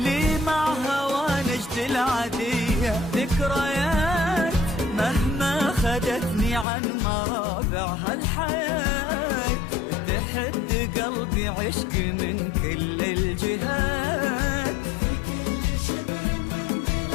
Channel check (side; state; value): right; drops out; at 6.7 s